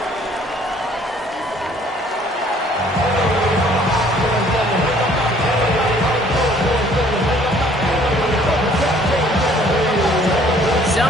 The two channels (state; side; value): normal; both; correlation 0.58